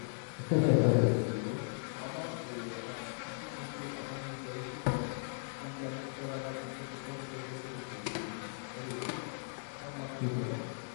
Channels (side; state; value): right; silent; digital silence